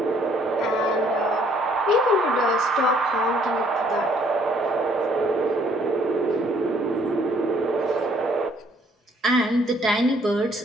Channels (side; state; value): both; normal; correlation 0.63